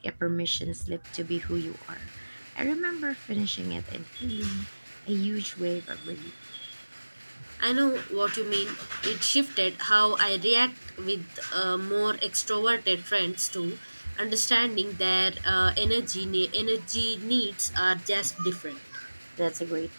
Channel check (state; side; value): inverted; both; correlation -1.00